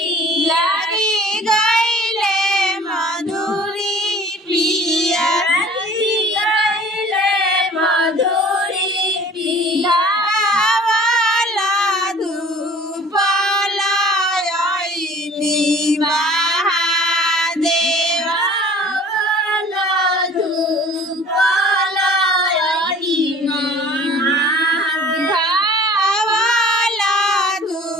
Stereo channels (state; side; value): normal; both; correlation 0.48